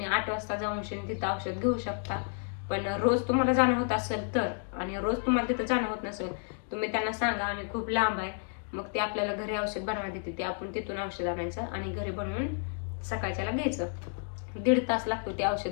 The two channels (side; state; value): right; silent; 57 dB below the other